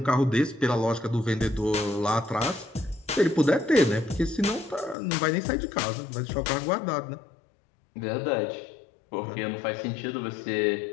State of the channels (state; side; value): drops out; right; at 5.0 s